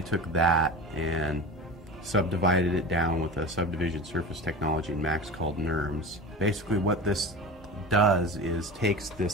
took that and subdivided it down with a subdivision surface technology in Max called NURMS. Basically what this does is takes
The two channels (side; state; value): both; normal; correlation 0.31